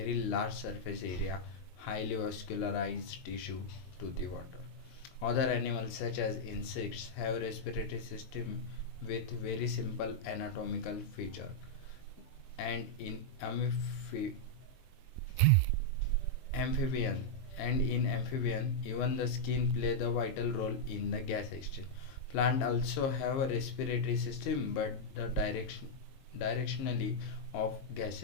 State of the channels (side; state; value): right; late; 22 ms